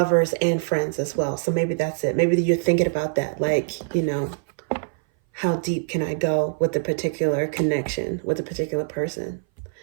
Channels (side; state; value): left; silent; 59 dB below the other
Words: and friends as well. So maybe that's it. Maybe you're thinking about that, like, you know, how deep can I go with a particular connection with a particular person?